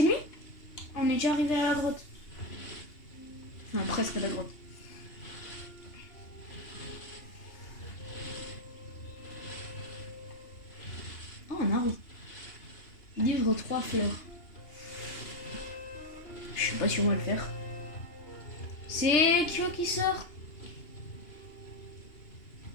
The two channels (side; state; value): right; late; 2.8 ms